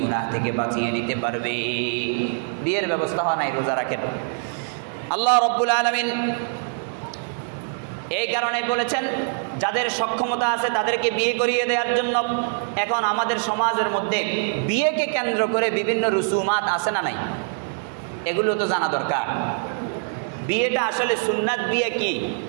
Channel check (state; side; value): silent; left; digital silence